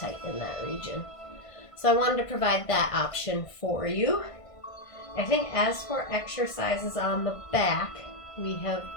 in that region. So I wanted to provide that option for you. I think as for exercises on the back, we have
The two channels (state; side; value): late; right; 1.5 ms